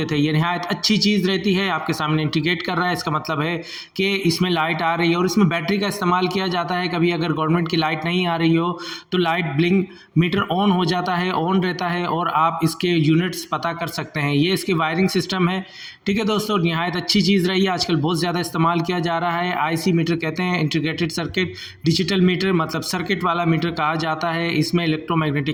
थे। ये नहायत अच्छी चीज़ रहती है, आपके सामने इंडिकेट कर रहा है, इसका मतलब है कि इसमें लाइट आ रही है। और इसमें बैटरी का इस्तेमाल किया जाता है। कभी अगर गवर्नमेंट की लाइट नहीं आ रही हो तो लाइट ब्लिंक मीटर ऑन हो जाता है, ऑन रहता है और आप इसके यूनिट्स पता कर सकते हैं। ये इसकी वायरिंग सिस्टम है, ठीक है दोस्तों। और निहायत अच्छी चीज़ रही है, आजकल बहुत ज़्यादा इस्तेमाल किया जा रहा है। आईसी मीटर कहते हैं, इंटीग्रेटेड सर्किट डिजिटल मीटर, मतलब सर्किट वाला मीटर कहा जाता है। इसमें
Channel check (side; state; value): both; identical; correlation 1.00